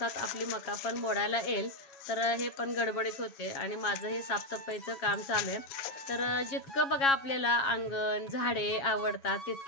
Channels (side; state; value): right; late; 7.3 ms